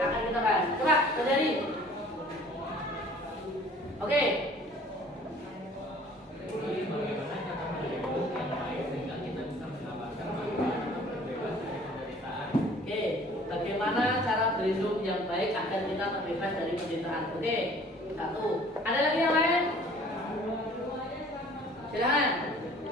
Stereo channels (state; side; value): normal; both; correlation 0.51